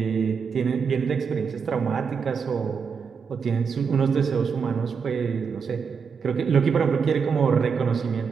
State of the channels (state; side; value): quieter; left; 6.1 dB